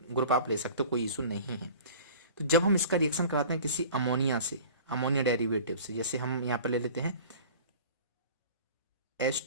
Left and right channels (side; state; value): both; inverted; correlation -0.43